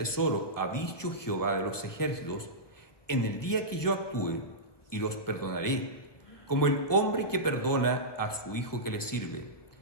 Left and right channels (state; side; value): late; right; 1.3 ms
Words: ha dicho Jehová de los ejércitos, en el día que yo actúe, y los perdonaré, como el hombre que perdona a su hijo que le sirve.